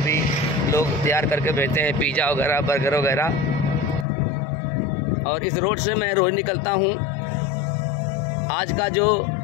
लोग तैयार करके भेजते हैं, पिज़्ज़ा वगैरह, बर्गर वगैरह। और इस रोड से मैं रोज़ निकलता हूँ। आज का जो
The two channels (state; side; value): drops out; right; at 4.0 s